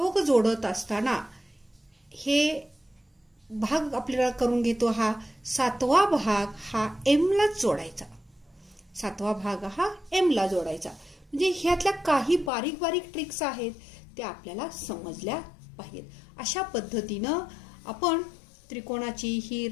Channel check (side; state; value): right; drops out; at 12.5 s